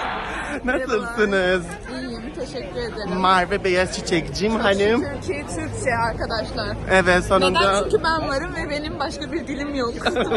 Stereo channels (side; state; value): both; identical; correlation 1.00